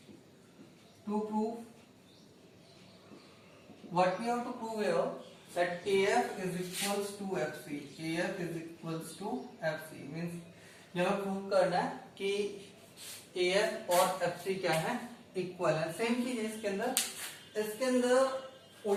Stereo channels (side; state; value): both; identical; correlation 1.00